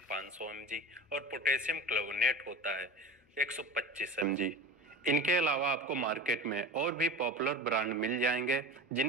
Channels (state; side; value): normal; both; correlation 0.31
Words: 500 mg और पोटेशियम क्लोविनेट होता है 125 mg। इनके अलावा आपको मार्केट में और भी पॉपुलर ब्रांड मिल जाएंगे